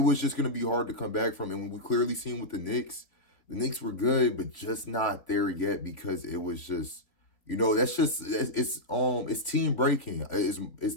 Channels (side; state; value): right; late; 3.9 ms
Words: just gonna be hard to come back from. And when we clearly seen with the Knicks were good, but just not there yet because it was just. That's just it's team breaking. It's